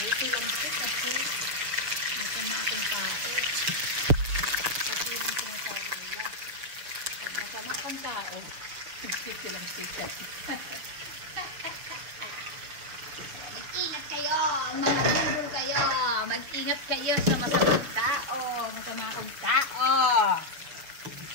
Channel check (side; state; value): left; late; 6.9 ms